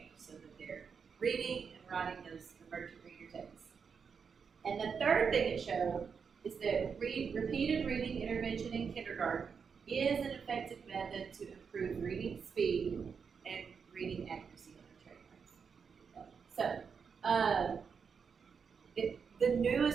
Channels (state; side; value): quieter; left; 6.1 dB